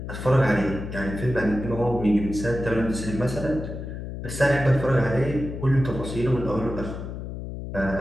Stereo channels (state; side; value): noise; left; hum, 8 dB below the sound